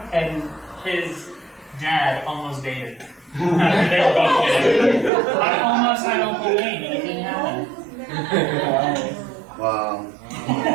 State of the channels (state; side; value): drops out; left; at 5.1 s